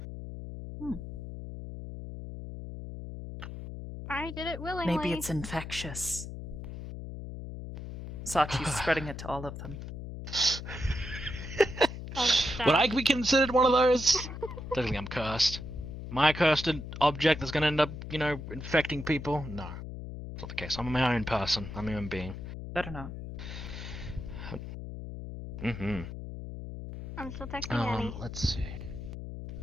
I did it willingly. Maybe it's infectious. Sachi's spreading it to all of them. Would I be considered one of those? Don't think I'm cursed. Am I a cursed object that's going to end up, infecting people? No. That's not the case. I'm my own person. I'm a human being. Better not. I'm still texting Annie. Let's see.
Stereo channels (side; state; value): left; noise; hum, 9 dB below the sound